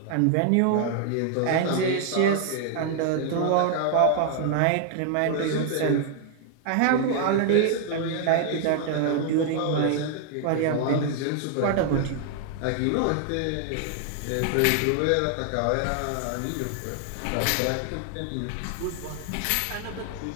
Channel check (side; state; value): both; different; correlation 0.00